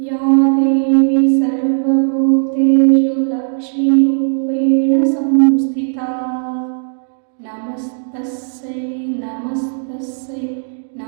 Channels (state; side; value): silent; left; digital silence